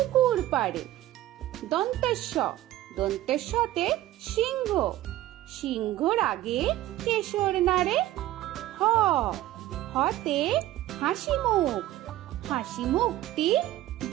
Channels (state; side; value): quieter; left; 14.9 dB